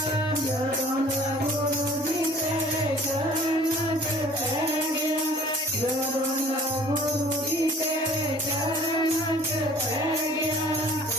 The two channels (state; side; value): normal; both; correlation 0.50